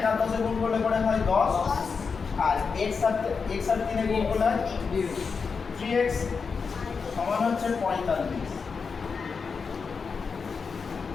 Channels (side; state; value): right; quieter; 5.3 dB